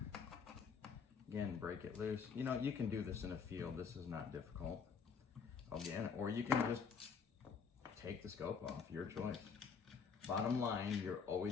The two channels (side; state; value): right; quieter; 6.0 dB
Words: Again, break it loose. You know, you can do this in a field. This is not difficult. Again, or you can just take the scope off, your choice. Bottom line, you're